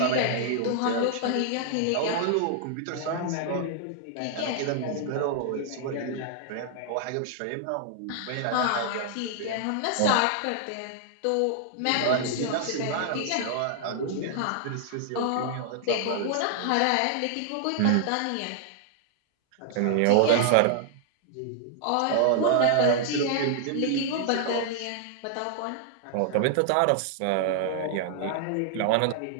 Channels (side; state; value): both; different; correlation -0.01